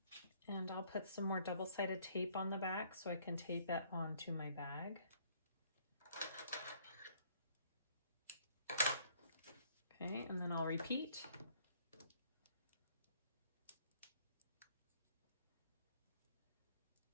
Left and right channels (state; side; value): inverted; both; correlation -0.62